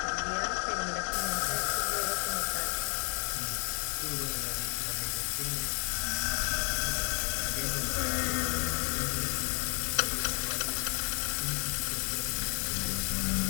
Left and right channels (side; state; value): right; quieter; 38.2 dB